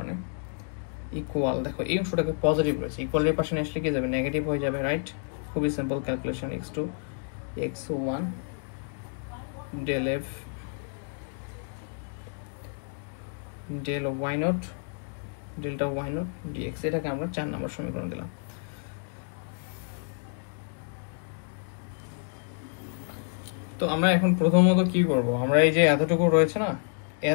ইকুয়াল, দেখো এই অংশটাকে পজিটিভ রয়েছে, ইকুয়ালের পাশে আসলে কি যাবে? নেগেটিভ হয়ে যাবে, রাইট? খুবই simple calculation. x2 x1 del f del y not delta y not dx, এটাকে আমরা 4 নম্বর সমীকরণ দিলাম। তো আমরা এখন প্রথমত কি করব, আমরা এই যে এতটুকু রয়েছে না,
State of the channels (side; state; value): right; silent; 56 dB below the other